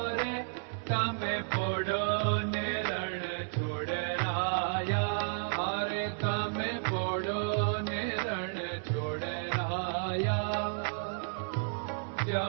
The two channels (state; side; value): silent; left; 56 dB below the other